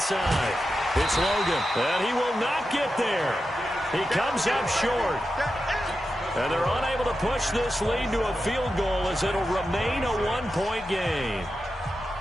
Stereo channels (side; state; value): both; normal; correlation 0.90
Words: side. It's Logan, and he will not get there. He comes up short. And they're unable to push this lead to a field goal as it'll remain a one-point game.